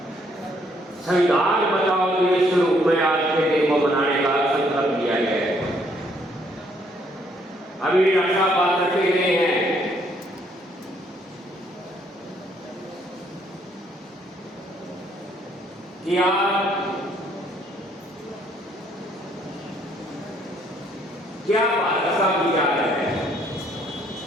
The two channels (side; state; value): both; normal; correlation 0.67